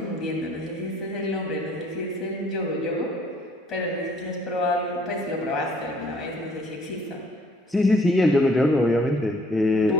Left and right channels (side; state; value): both; normal; correlation 0.61